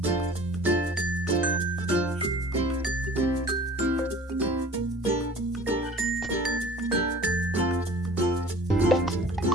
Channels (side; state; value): both; normal; correlation 0.46